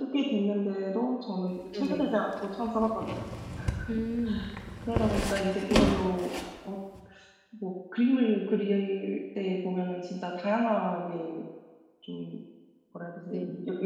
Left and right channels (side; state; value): both; identical; correlation 1.00